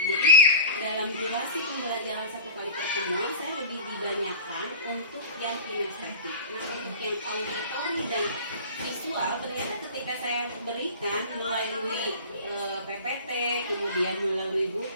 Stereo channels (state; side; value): inverted; both; correlation -0.39